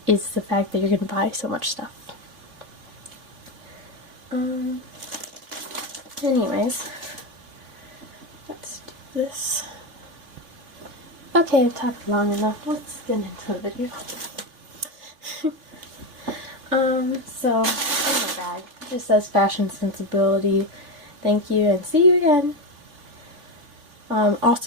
is the fact that you're gonna buy so much stuff. Anyways, let's do this. Okay, I've talked long enough. Let's get into the video. So, in my bag, it just says fashion sensibility. Thank you, and see you again.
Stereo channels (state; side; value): late; left; 3.5 ms